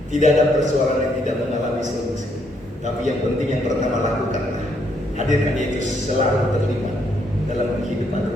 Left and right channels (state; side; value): normal; both; correlation 0.73